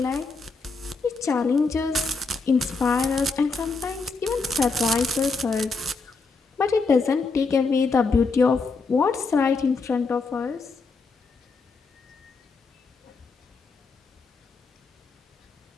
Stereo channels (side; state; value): right; quieter; 4.1 dB